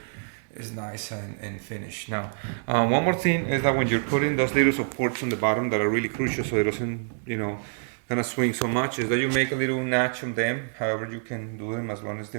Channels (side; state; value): left; silent; digital silence